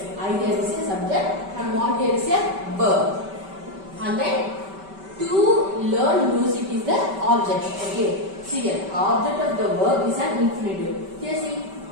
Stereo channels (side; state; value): left; late; 5.2 ms